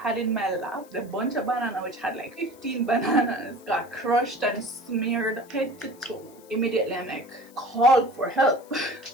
in my lap, the bunch of banana which had like 15 bananas, got crushed and smeared head to toe. Immediately I'm like, called for help.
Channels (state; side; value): noise; left; hiss, 26 dB below the sound